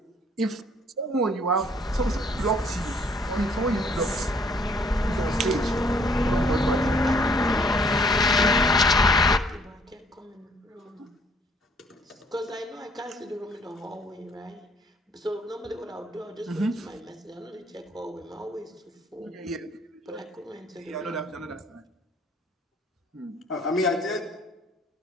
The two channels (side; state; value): both; normal; correlation 0.62